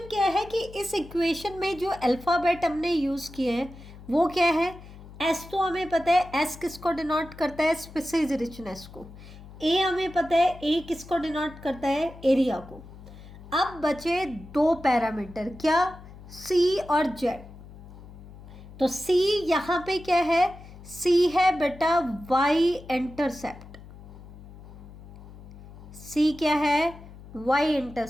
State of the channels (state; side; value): noise; left; hum, 17 dB below the sound